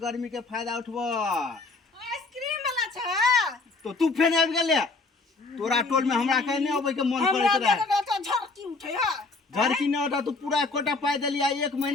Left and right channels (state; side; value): quieter; right; 3.7 dB